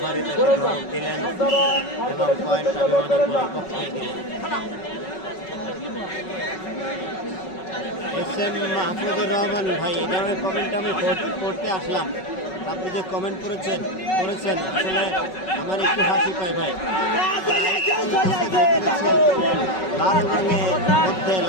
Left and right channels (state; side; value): late; right; 5.4 ms